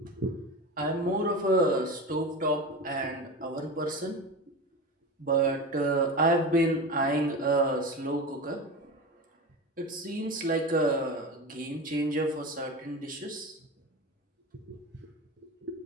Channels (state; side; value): normal; both; correlation 0.27